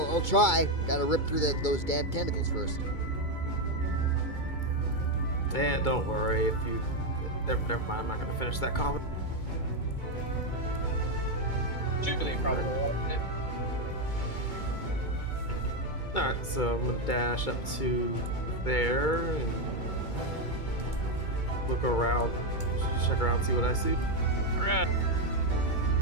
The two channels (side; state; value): right; late; 2.3 ms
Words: I'll try. Gotta rip through those damn tentacles first. And don't worry if you. Never mind. I'm not gonna finish that comment. Jubilee probably won't. All right, so I'm gonna dash up to there and look around, check around, see what I see. Alright. As